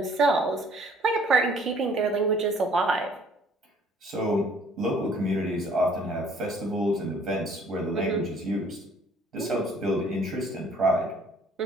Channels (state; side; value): normal; both; correlation 0.58